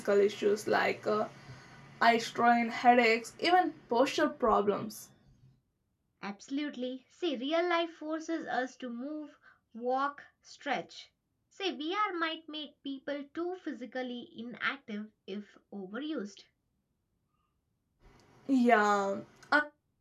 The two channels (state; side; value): identical; both; correlation 1.00